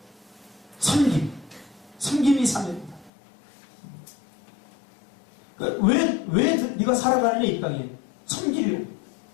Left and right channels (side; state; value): right; drops out; at 3.1 s